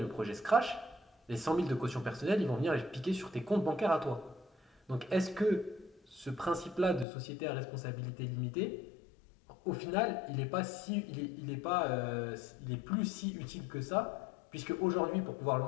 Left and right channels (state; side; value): drops out; right; at 7.1 s